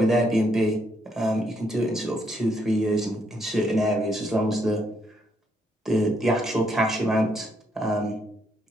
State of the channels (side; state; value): both; normal; correlation 0.74